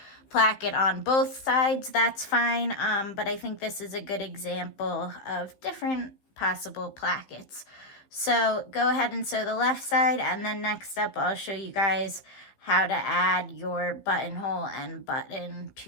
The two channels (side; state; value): right; late; 15 ms